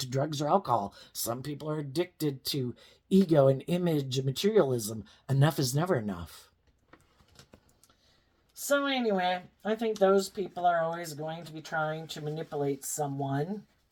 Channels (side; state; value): both; identical; correlation 1.00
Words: drugs or alcohol. Some people are addicted to ego and image and materialism. Enough is never enough. So, anyway, I think those people are always going to be trying to manipulate someone